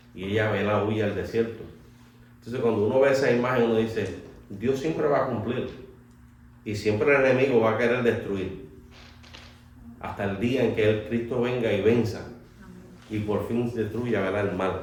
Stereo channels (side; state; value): both; identical; correlation 1.00